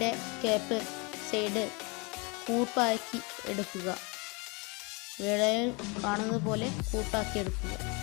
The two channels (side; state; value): right; quieter; 29.8 dB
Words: ക്യാപ്പ് സൈഡ് കൂട്ടാക്കി എടുക്കുക. വീഡിയോയിൽ കാണുന്നത് പോലെ കൂട്ടാക്കി എടുക്കുക.